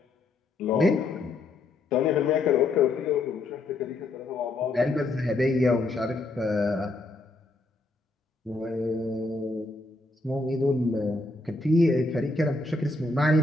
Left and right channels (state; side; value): quieter; right; 3.0 dB